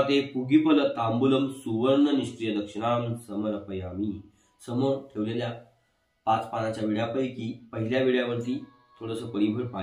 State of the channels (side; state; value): both; identical; correlation 1.00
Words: पुगिफल तांबूलम सुवर्ण निष्क्रिय दक्षिणाम समर्पयामी. समोर ठेवलेल्या 5 पानाच्या विड्यापैकी पहिल्या विड्यावरती थोडंसं परिभर